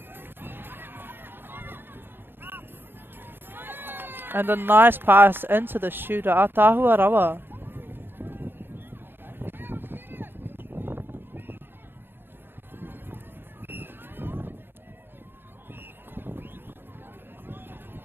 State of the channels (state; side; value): late; left; 0.10 ms